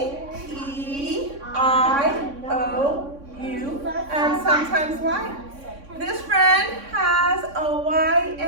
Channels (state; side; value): late; left; 3.6 ms